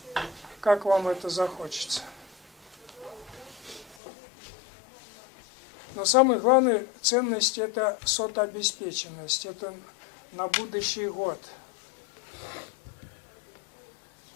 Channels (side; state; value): right; drops out; at 4.0 s